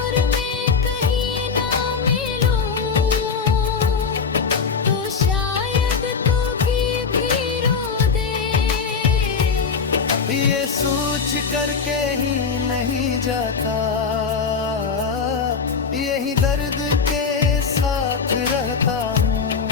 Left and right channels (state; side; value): quieter; right; 5.6 dB